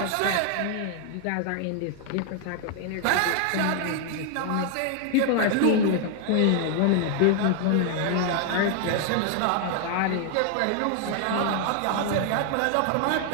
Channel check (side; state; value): both; different; correlation 0.00